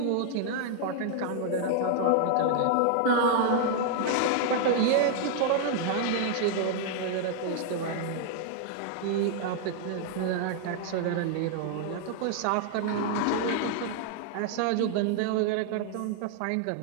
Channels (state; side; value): different; both; correlation 0.00